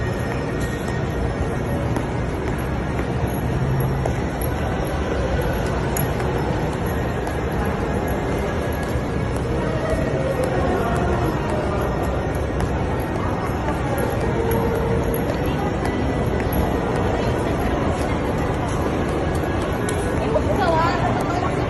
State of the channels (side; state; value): both; identical; correlation 1.00